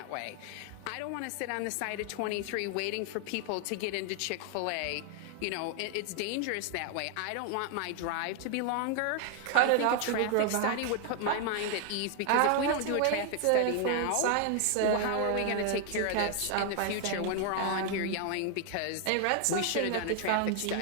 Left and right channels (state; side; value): different; both; correlation 0.00